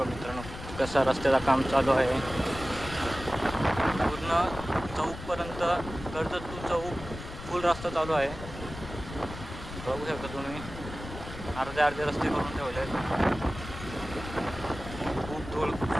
मित्रांनो कसा रस्त्याचं काम चालू आहे। पूर्ण चौकपर्यंत कर्जत टू चौक फुल रस्ता चालू आहे। बघू शकता तुम्ही, अर्धे रस्ते करून ठेवले आहेत। खूप धूळ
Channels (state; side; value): noise; left; rumble, 11 dB below the sound